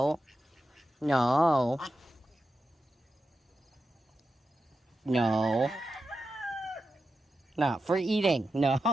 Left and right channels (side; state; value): both; normal; correlation 0.90